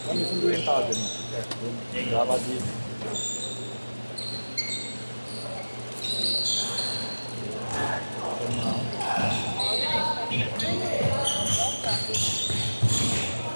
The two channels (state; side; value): inverted; both; correlation -1.00